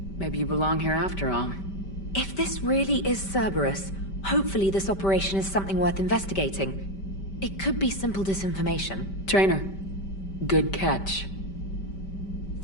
Maybe you belong here after all. If this really is Cerberus, hopefully this operation is something worth investigating. It could be simple disinformation. Trainer, good catch.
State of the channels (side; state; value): right; late; 5.1 ms